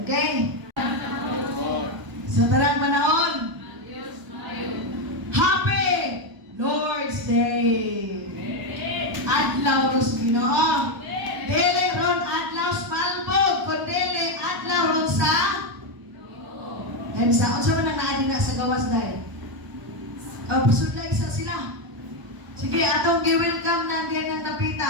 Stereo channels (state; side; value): late; left; 1.0 ms